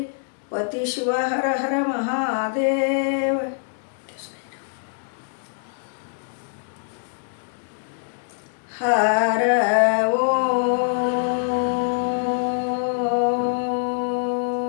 पति शिव हर हर महादेव। हर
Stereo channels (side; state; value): right; silent; digital silence